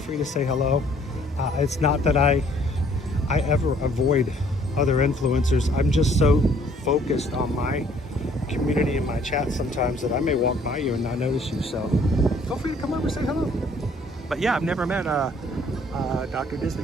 to say hello. It's not that I ever avoid other influencers. I'm just so focused on my community and my chat sometimes that I may walk by you and not notice you. So feel free to come over and say hello. But yeah, I've never met Dr.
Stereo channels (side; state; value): both; normal; correlation 0.60